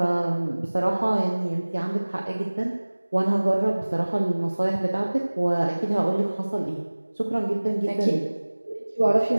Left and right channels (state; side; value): inverted; both; correlation -1.00